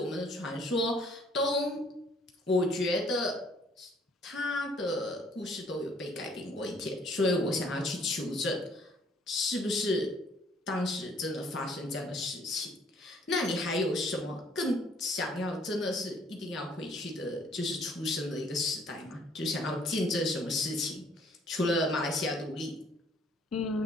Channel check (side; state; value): both; normal; correlation 0.61